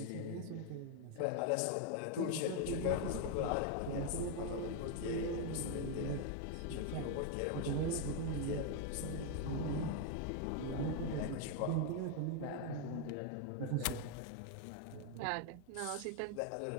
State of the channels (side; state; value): both; different; correlation 0.01